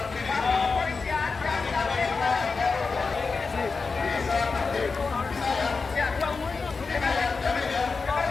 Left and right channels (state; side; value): quieter; right; 4.5 dB